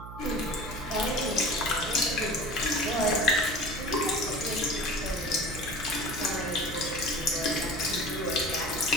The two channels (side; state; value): right; noise; hum, 12 dB below the sound